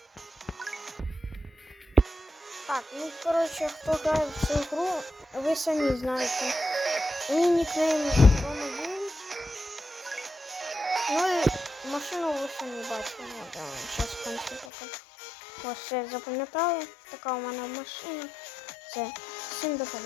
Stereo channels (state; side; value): drops out; right; at 14.7 s